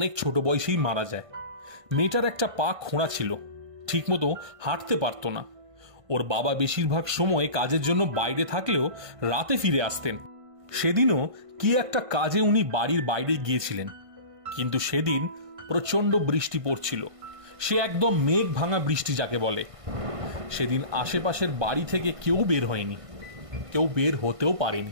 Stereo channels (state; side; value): late; left; 1.5 ms